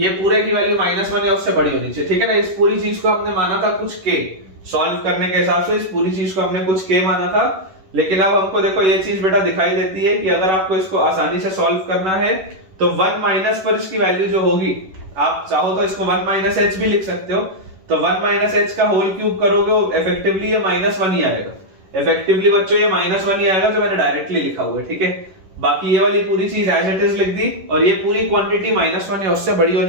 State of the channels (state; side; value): late; left; 11 ms